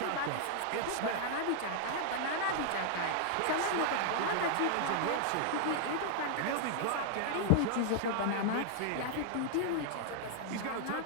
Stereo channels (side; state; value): both; different; correlation -0.01